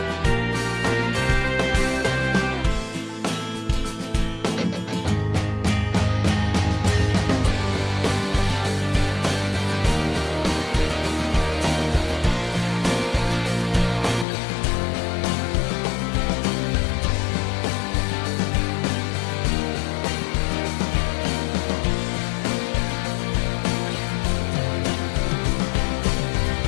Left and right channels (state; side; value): drops out; right; at 14.2 s